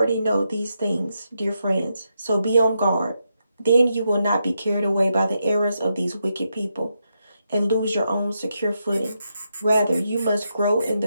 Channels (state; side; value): inverted; both; correlation -0.83